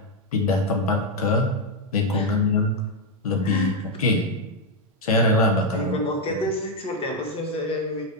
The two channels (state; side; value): normal; both; correlation 0.02